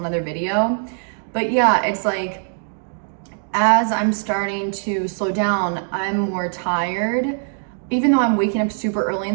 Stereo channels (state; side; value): silent; left; digital silence